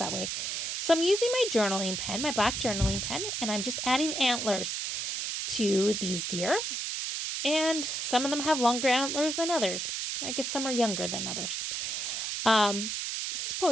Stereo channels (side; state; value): right; noise; hiss, 2 dB below the sound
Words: way. So I'm using my journaling pen, my black journaling pen, and I'm just adding antlers to these deer. And some of them have longer antlers than others. I guess some are younger than others. I